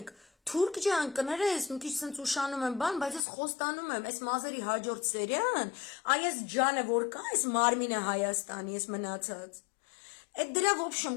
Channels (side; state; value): right; drops out; at 3.2 s